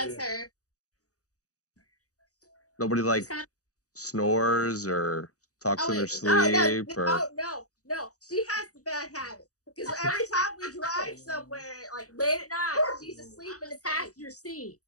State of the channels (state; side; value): late; right; 0.66 ms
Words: it's her. Nobody like snores or talks in their sleep or No. She has the bad habit. Because every time we drive somewhere, like late at night, she's asleep in the passenger seat.